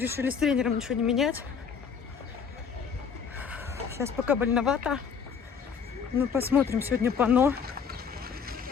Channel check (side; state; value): right; quieter; 6.5 dB